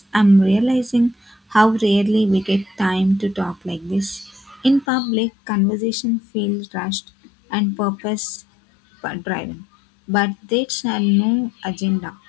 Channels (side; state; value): right; drops out; at 4.9 s